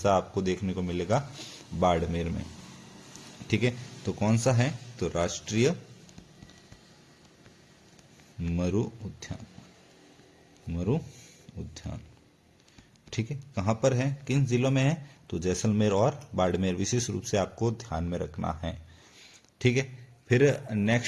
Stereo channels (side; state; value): both; identical; correlation 1.00